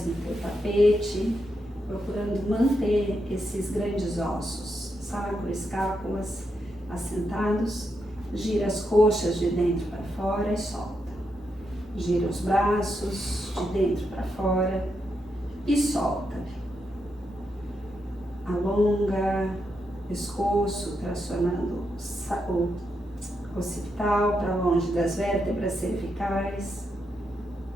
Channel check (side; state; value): both; normal; correlation 0.83